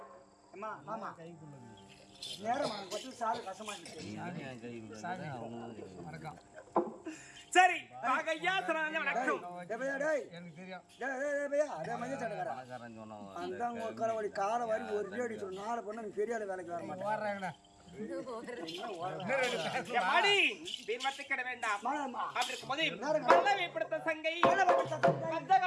அம்மா மாமா நேரம் கொட்டு சாரு கசமா இருக்கு சரி ஐயா சொன்னாங்க வணக்கம் எனக்கு தெரியும் அந்த உட்கார வழி காலை வாரி ஒரு அடி சொல்லு 4 பொண்ணு நீ பெரிய ஆளு வேலைக்கு வர மாட்டேன் மாடி வீரமத்தை கிட வேண்டாம் அப்படி இருக்கும்போது பல்லவிப்படுத்த சங்கை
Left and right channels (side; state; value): both; identical; correlation 1.00